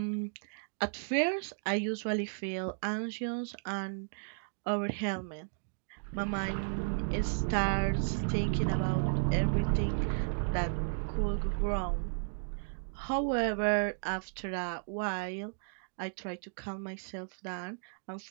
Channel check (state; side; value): silent; left; digital silence